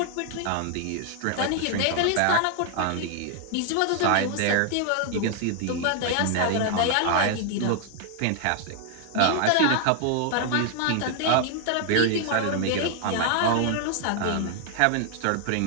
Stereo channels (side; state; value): both; different; correlation 0.00